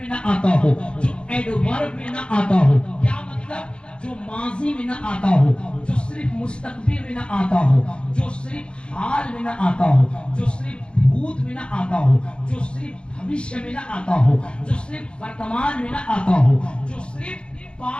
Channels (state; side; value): late; right; 0.056 ms